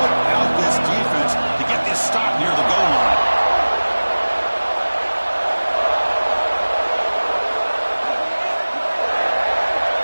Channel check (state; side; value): inverted; both; correlation -1.00